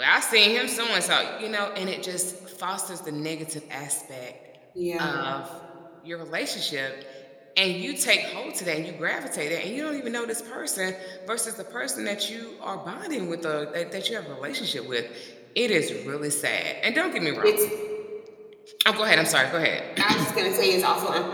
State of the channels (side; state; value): both; identical; correlation 1.00